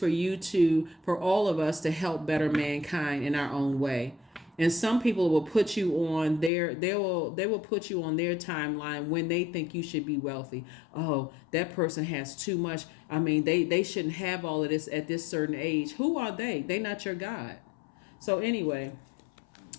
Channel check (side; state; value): right; drops out; at 6.5 s